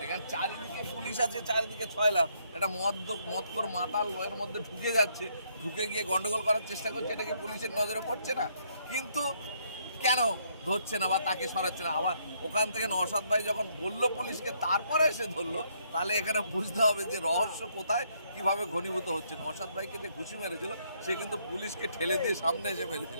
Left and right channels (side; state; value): both; inverted; correlation -0.71